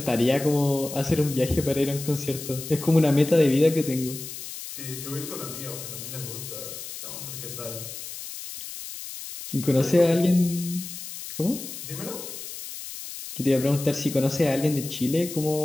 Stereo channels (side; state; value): left; noise; hiss, 10 dB below the sound